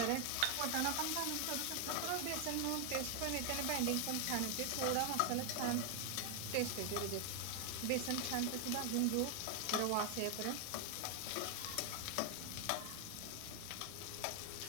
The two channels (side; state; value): both; different; correlation 0.00